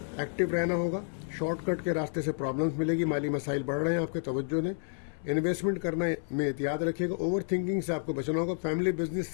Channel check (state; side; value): silent; right; 58 dB below the other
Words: ایکٹیو رہنا ہوگا. شارٹ کٹ کے راستے سے پرابلمس ملے گی. مالی مسائل بڑھ رہے ہیں, آپ کے توجہ دیں. انویسٹمنٹ کرنا میں احتیاط رکھیے گا. اوور تھنکنگ سے آپ کو بچنا ہوگا. فیملی بزنس